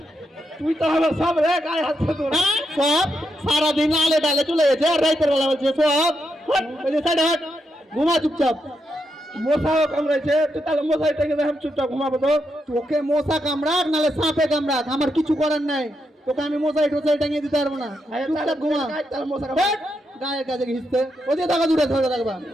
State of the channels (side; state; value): both; normal; correlation 0.83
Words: তুই তো আমার সব রে গায়ে হাত তোর হ্যাঁ? সব সারাদিন আলে ডালে চলে গেছে আর রাইতের বেলা বলছে সব হট, ওই যে সাইড হট ঘুমা চুপচাপ মশাও কামড়াইছে তুই তাহলে মশাই থেকে আমি চুপচাপ ঘুমাবো তো তোকে মশা কামড়াক নালে সাপে কামড়াক আমার কিছু করার নাই তোকে আমি মশাই টোসাই টাঙিয়ে দিতে পারবো না চুপচাপ ঘুমা তাহলে মশা হট, গায়ের কাছে ঘিসতে ওদিকে থাকা দূরে ধরে রাখবা